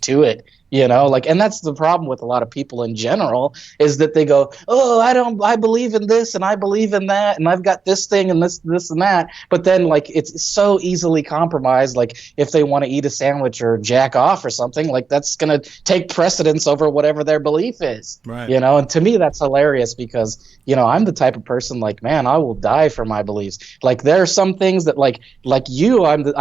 to it? Like, and that's the problem with a lot of people in general, is that they go, oh, I believe in this and I believe in that, and I've got this thing and this and that, but then like it's so easily compromised. Like if they want to eat a sandwich or jack off or something, like that's gonna take precedence over whatever their belief is. right? And to me that's hilarious, because I'm the type of person, like, man, I will die for my beliefs. Like there are some things that like you,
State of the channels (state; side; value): quieter; left; 5.4 dB